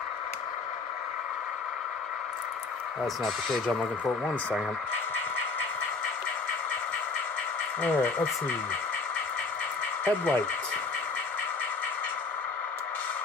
That's not the page I'm looking for. 1 second. All right, let's see. Headlight.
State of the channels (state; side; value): quieter; right; 4.3 dB